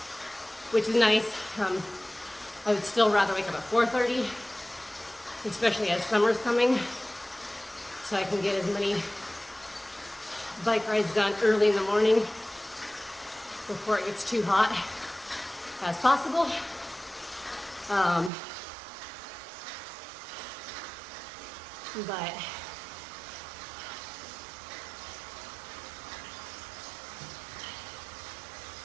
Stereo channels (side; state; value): left; drops out; at 18.3 s